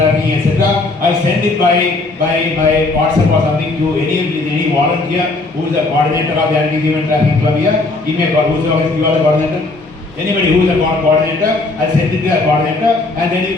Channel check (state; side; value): quieter; right; 3.2 dB